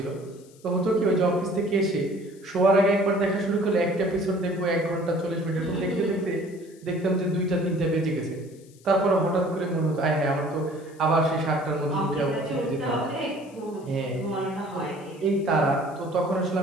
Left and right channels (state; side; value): noise; left; hiss, 27 dB below the sound